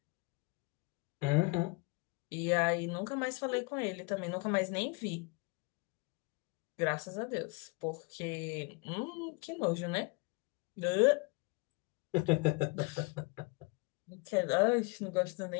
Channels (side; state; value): right; quieter; 27.7 dB